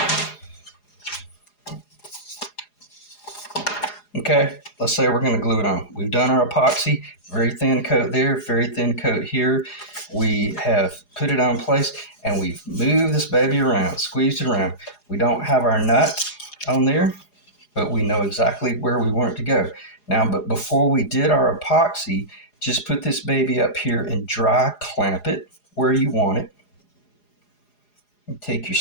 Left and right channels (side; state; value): right; late; 4.8 ms